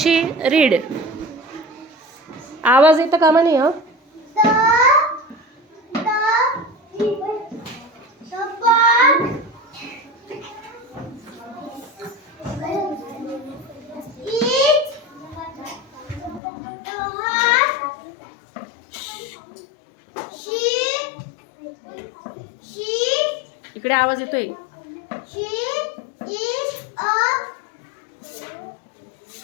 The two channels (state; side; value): drops out; right; at 16.4 s